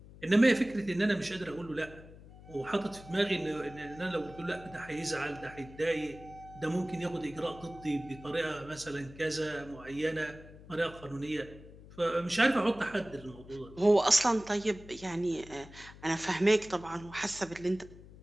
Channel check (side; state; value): left; noise; hum, 19 dB below the sound